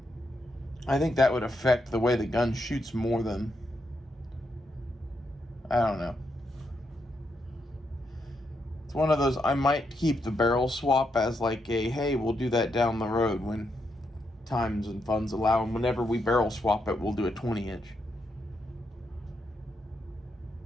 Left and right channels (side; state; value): both; normal; correlation 0.81